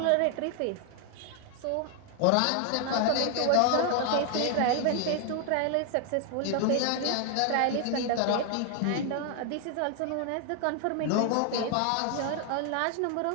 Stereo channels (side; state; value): both; different; correlation 0.00